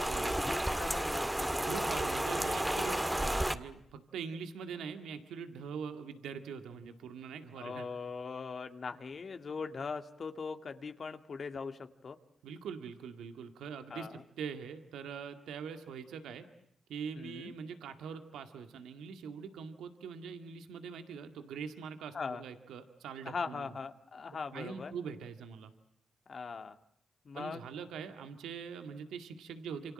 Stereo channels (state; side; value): normal; both; correlation 0.87